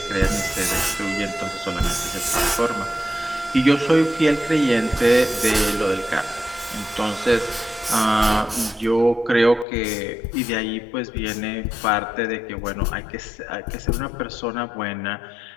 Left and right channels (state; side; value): drops out; right; at 9.7 s